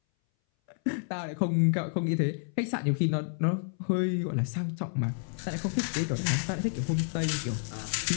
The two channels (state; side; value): silent; right; 58 dB below the other